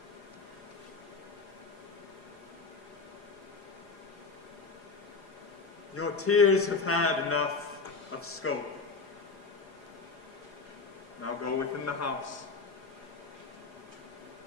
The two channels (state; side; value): quieter; right; 4.3 dB